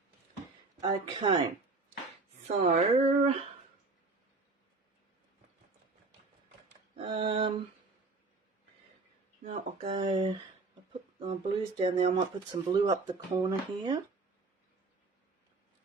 Okay, so now I'll put my blues down there. I might put some blue up the corner here.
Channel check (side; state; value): left; quieter; 3.8 dB